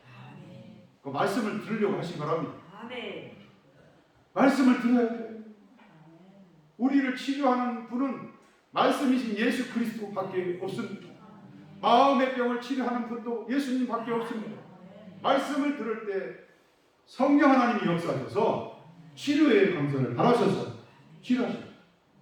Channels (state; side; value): identical; both; correlation 1.00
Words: 그 말씀을 들으려고 하시 바랍니다. 말씀을 들어야 돼요. 우리를 치료하는 분은 말씀이신 예수 그리스도밖에 없습니다. 마음의 병을 치료하는 분도 예수님밖에 없습니다. 말씀을 들을 때 성령 하나님이 역사하셔서 치료의 강선을 바라셔서 치료하십니다.